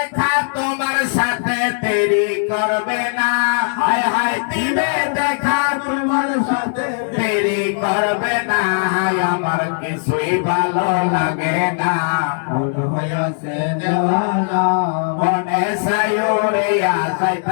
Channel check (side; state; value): right; silent; digital silence